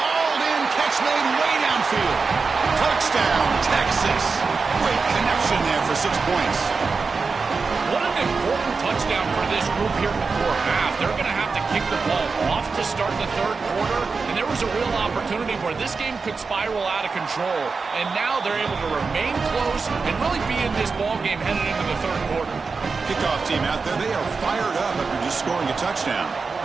in. Catch made way downfield. Touchdown, Texas. Great connection there for 6 points. What an important touchdown for this group here before half. They're going to have to kick the ball off to start the third quarter, and there was a real opportunity where this game could spiral out of control, and now they're able to remain close and really be in this ball game headed into the third quarter. Kickoff team out there, they are fired up after just scoring a touchdown.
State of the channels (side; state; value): left; quieter; 4.6 dB